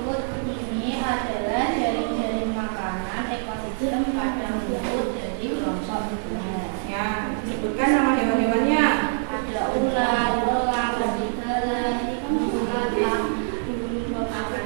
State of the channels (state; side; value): silent; left; digital silence